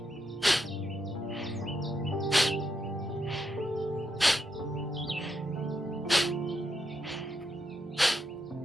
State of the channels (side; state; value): both; normal; correlation 0.82